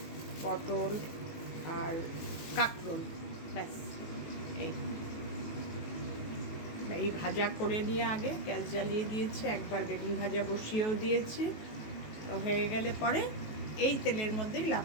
পটল আর কাঁকরোল, ব্যাস। এই ভাজা করে নিয়ে আগে গ্যাস জ্বালিয়ে দিয়েছি, একবার বেগুন ভাজা বসিয়েও দিয়েছি। হয়ে গেলে পরে এই তেলের মধ্যেই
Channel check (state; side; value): late; right; 19 ms